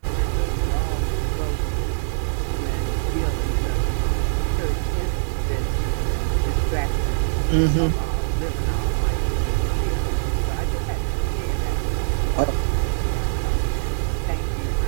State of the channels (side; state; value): left; silent; digital silence